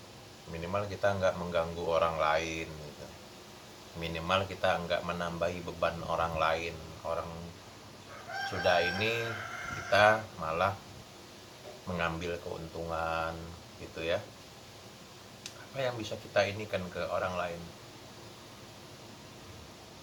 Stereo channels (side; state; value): both; identical; correlation 1.00